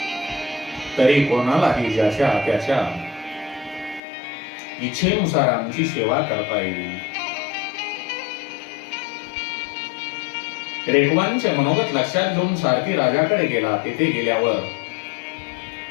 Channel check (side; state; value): right; drops out; at 4.0 s